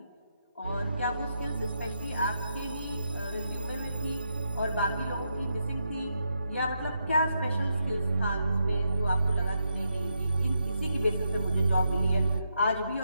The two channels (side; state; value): both; inverted; correlation -0.82